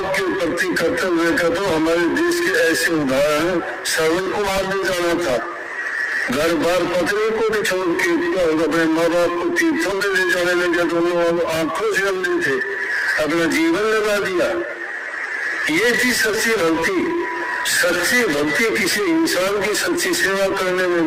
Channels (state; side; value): identical; both; correlation 1.00